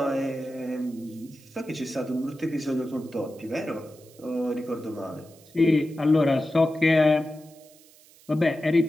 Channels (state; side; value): noise; right; hiss, 26 dB below the sound